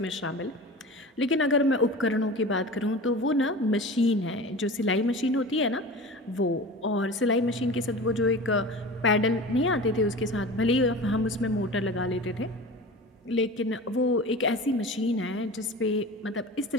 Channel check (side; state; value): both; normal; correlation 0.34